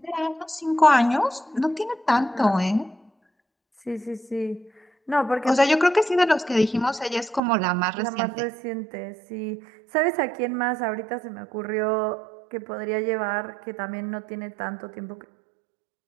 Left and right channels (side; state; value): left; drops out; at 7.4 s